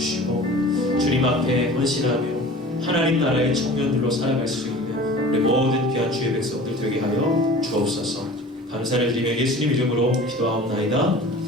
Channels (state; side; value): normal; both; correlation 0.41